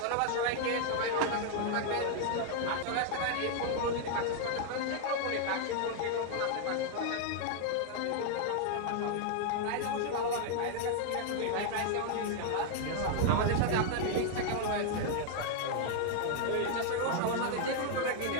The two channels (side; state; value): both; different; correlation 0.00